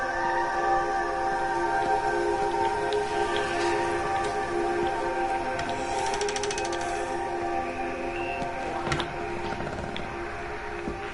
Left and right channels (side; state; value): both; identical; correlation 1.00